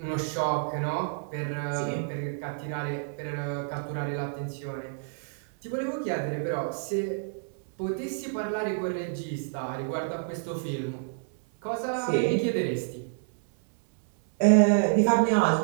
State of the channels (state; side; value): silent; left; 59 dB below the other